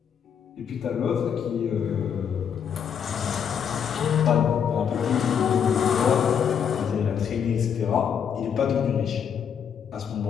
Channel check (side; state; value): right; quieter; 7.8 dB